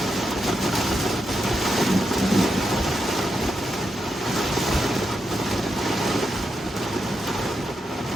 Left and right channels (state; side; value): normal; both; correlation 0.85